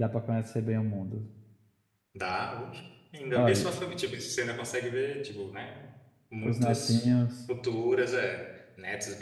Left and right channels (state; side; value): identical; both; correlation 1.00